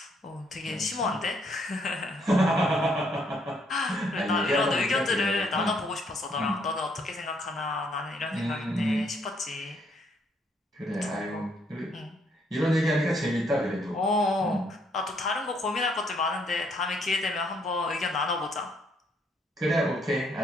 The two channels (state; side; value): normal; both; correlation 0.70